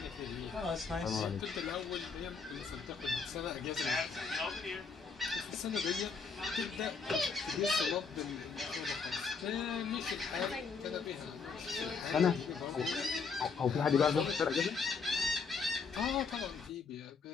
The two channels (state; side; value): quieter; right; 5.2 dB